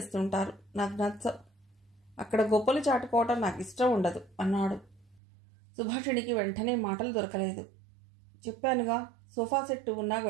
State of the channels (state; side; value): drops out; left; at 5.2 s